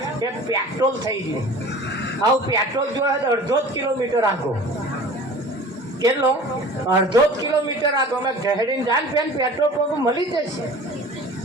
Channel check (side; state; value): both; normal; correlation 0.42